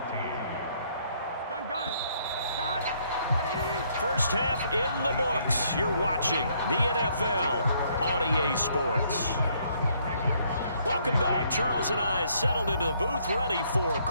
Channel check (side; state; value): both; inverted; correlation -0.68